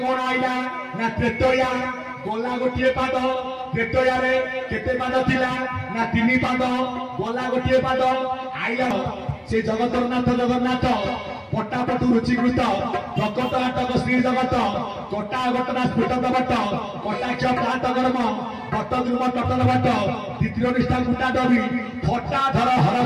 କଣ ଆଇଲା ନା ତ୍ରେତୟା ଗଲା ଗୋଟିଏ ପାଦ ତ୍ରେତୟାରେ କେତେ ପାଦ ଥିଲା ନା 3 ପାଦ ଗଲା ଗୋଟିଏ ପାଦ ଆଇଲା ସେ ଜଗତରନାଥ ଜଗନ୍ନାଥ ପଟାପଟୁ ରୁଚିକୃତ ପ୍ରକଟ ନାଟକ ଶ୍ରୀ ଜଗତ କଟା ଘଟଣା ସ୍ଫୁଟତ ବଟ କଟାକ୍ଷ ପ୍ରାତ କର୍ମ ବଟ ଧ୍ରୁବ ଟଟନ ବଟ ଦ୍ୱିତୀୟ ନିଷ୍ଠା କୁଟା ଦବି ଫଟା ଧର ହର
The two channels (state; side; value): identical; both; correlation 1.00